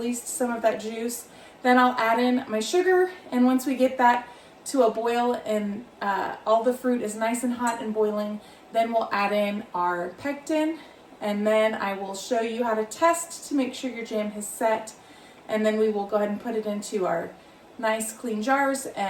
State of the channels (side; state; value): both; identical; correlation 1.00